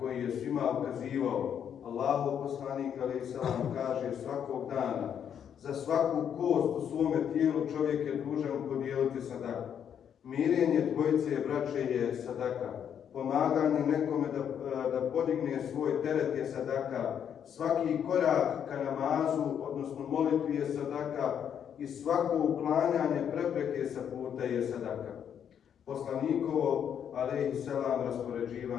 koji je svima ukazivao. Allahov poslanik alejhi selam kaže svakog dana, za svaku kost u svome tijelu čovjek je dužan podijeliti sadaku. Mirenje dvojice braće je sadaka. Pomaganje nekome da podigne svoj teret je sadaka. Svaki korak ka namazu, odnosno molitvi je sadaka i svako uklanjanje prepreke sa puta je sadaka. Poslanikovo, alejhi selam,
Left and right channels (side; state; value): right; quieter; 8.6 dB